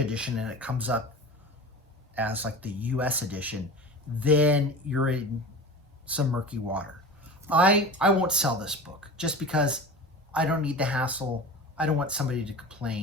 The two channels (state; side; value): normal; both; correlation 0.33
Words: and it comes up as like the US edition, then you're in some murky water. I won't sell this book just because I don't need the hassle. I don't want somebody to